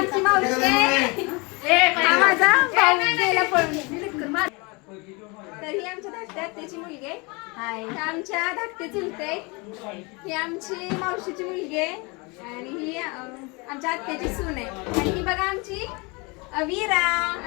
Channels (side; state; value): right; quieter; 28.2 dB